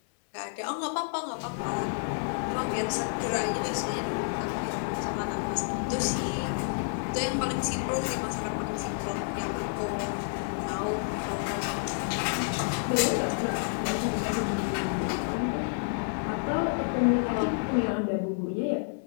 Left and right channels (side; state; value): right; silent; 58 dB below the other